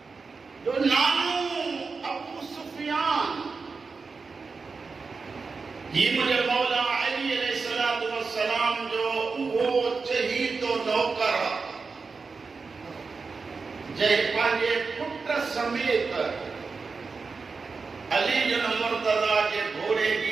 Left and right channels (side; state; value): left; quieter; 4.6 dB